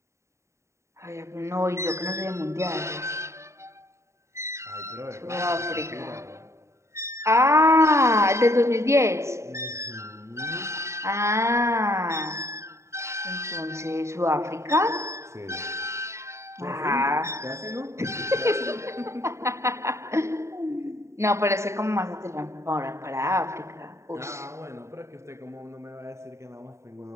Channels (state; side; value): late; left; 0.14 ms